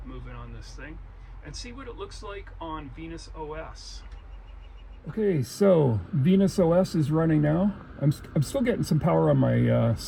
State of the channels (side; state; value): both; identical; correlation 1.00